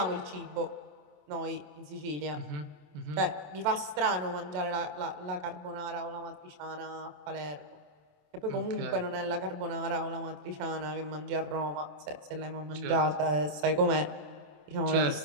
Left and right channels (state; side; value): late; left; 27 ms